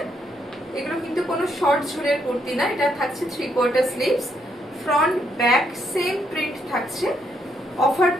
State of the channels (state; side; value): normal; both; correlation 0.75